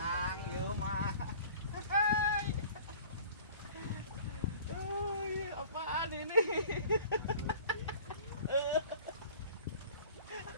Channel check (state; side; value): inverted; both; correlation -0.47